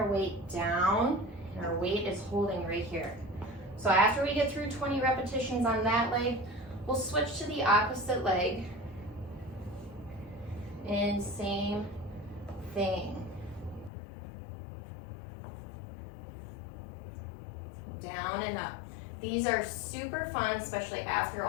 weight down, and our weight is holding right here. So after we get through 20 repetitions on that leg, we'll switch to the opposite leg. And same thing. Down and up. These are super fun, especially after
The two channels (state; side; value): drops out; right; at 13.9 s